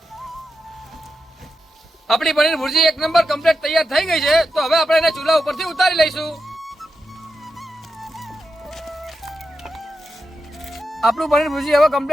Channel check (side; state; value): both; normal; correlation 0.89